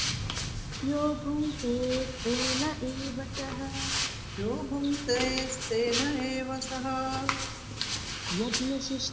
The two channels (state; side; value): identical; both; correlation 1.00